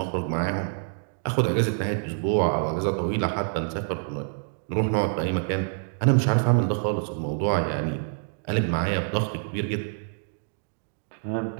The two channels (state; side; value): silent; left; digital silence